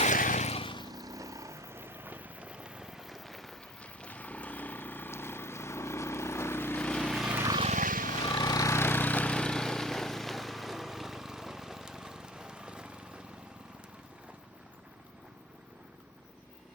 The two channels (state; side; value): normal; both; correlation 0.42